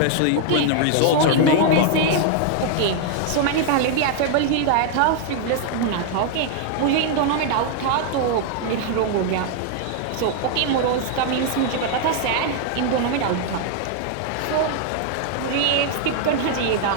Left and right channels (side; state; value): both; different; correlation 0.00